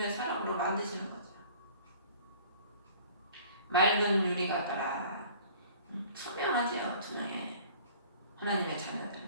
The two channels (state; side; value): inverted; both; correlation -0.50